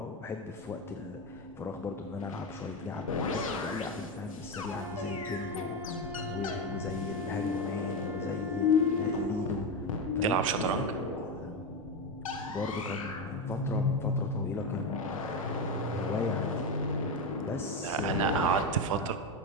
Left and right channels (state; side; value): normal; both; correlation 0.13